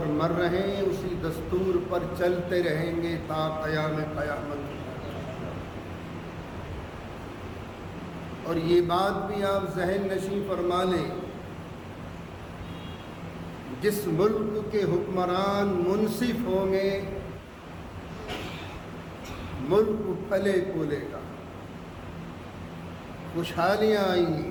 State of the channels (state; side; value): identical; both; correlation 1.00